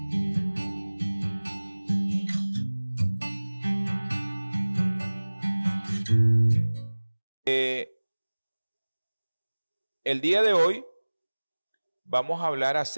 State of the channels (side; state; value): both; inverted; correlation -1.00